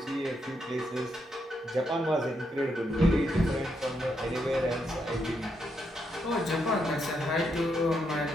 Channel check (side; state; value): both; normal; correlation 0.79